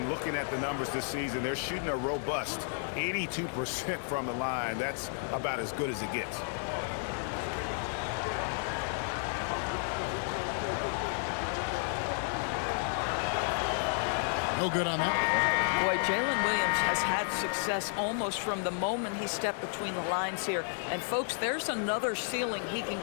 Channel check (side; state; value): right; silent; 56 dB below the other